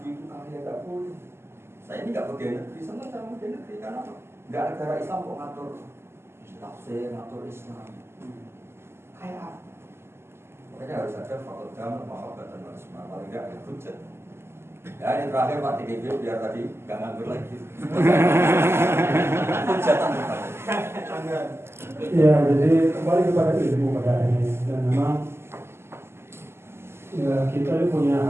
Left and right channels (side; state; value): left; late; 0.12 ms